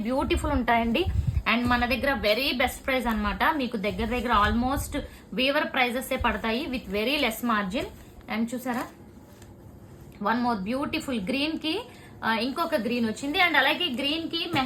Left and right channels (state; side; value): identical; both; correlation 1.00